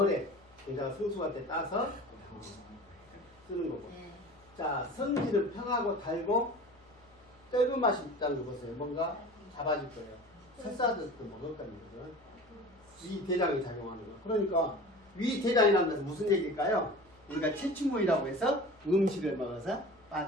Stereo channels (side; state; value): left; noise; hum, 29 dB below the sound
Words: 굉장히 성수할 때 따서 쓰는 거고. 자, 성질은 평하고 달고 떫은 맛이 있다는 거 보세요. 뭔가 잡아줄 거예요. 설사듯도 먹을 겁니다. 위 대장이 작용하는 거. 그러니까 위 대장이라는 것은 무슨 얘기일까요? 우리가 체충문이라고 해서 음식을 먹어서